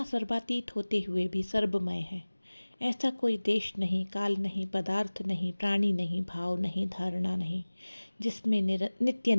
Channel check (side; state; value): both; inverted; correlation -1.00